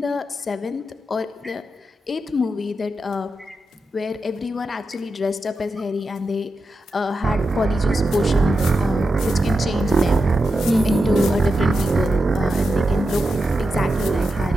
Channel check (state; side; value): normal; both; correlation 0.88